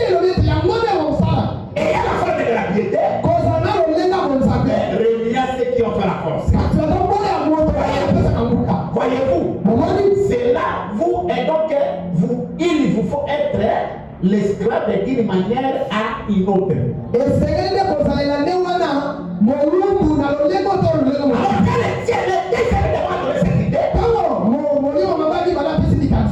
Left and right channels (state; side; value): identical; both; correlation 1.00